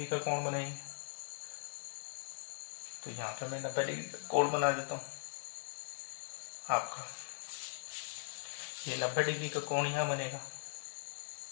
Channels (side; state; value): right; silent; digital silence